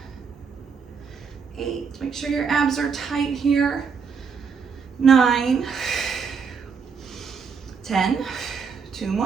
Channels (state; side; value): quieter; left; 5.8 dB